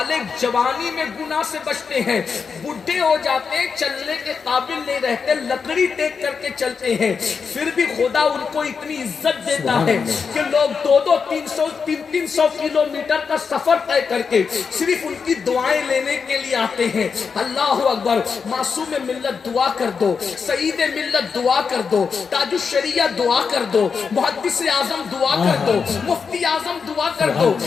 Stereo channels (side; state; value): right; quieter; 5.7 dB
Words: جوانی میں گناہ سے بچتے ہیں، بڈھے ہو جاتے ہیں، چلنے کے قابل نہیں رہتے، لکڑی ٹیک کر کے چلتے ہیں، پھر بھی خدا ان کو اتنی عزت دیتا ہے کہ لوگ 200-300 کلومیٹر کا سفر طے کر کے صرف ان کی دعائیں لینے کے لیے آتے ہیں۔ اللہ اکبر۔ معصوم ملت دعا کر دو، سعید ملت دعا کر دو، تاج الشریعہ دعا کر دو، محدث اعظم دعا کر دو، مفتی اعظم دعا کر دو۔